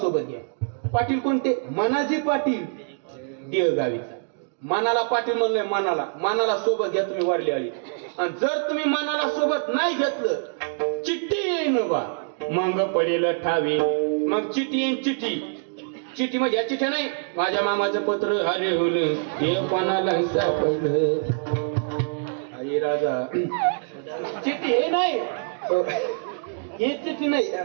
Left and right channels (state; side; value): silent; left; digital silence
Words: घ्या. पाटील कोणते? मनाजी पाटील देवगावीचा. मनाला पाटील म्हणलंय, मनाला सोबत घ्या तुम्ही वरली आळी. आणि जर तुम्ही मनाला सोबत नाही घेतलं चिठ्ठी येईन बा, मांग पडेल ठावी. मग चिठ्ठी येईन. चिठ्ठी म्हणजे या चिठ्ठ्या नाही, माझ्या मामाचं पत्र हरवलं हे कोणाला सापडलं. अरे राजा, चिठ्ठी हे नाही, हे चिठ्ठी नाही.